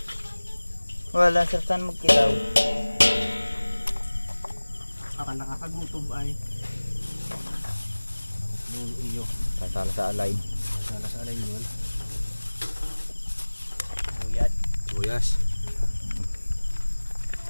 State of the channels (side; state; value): both; inverted; correlation -1.00